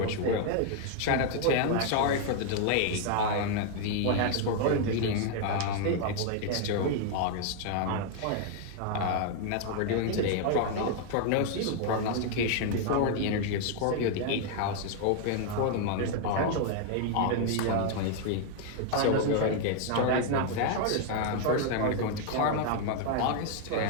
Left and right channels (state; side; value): different; both; correlation 0.00